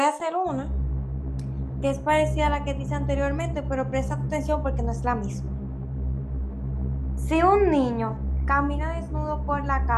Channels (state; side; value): identical; both; correlation 1.00